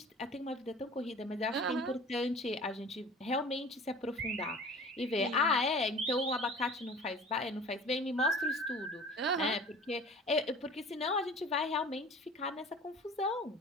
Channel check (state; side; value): normal; both; correlation 0.43